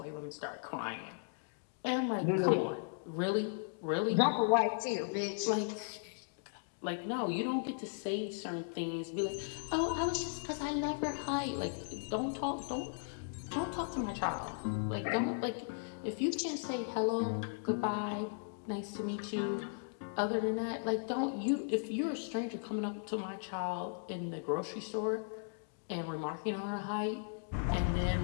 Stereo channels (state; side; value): silent; right; digital silence